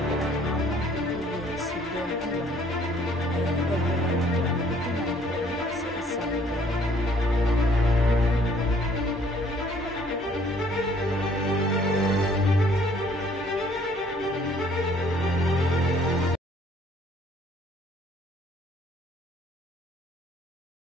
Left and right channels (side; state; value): both; normal; correlation 0.60